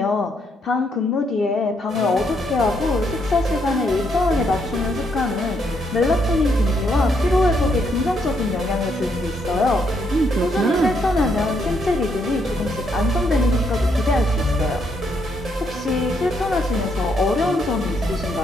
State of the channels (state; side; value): normal; both; correlation 0.75